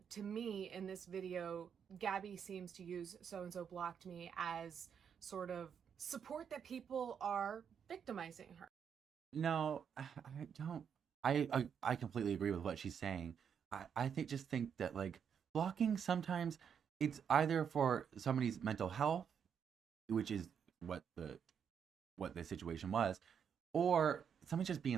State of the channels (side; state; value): left; quieter; 7.5 dB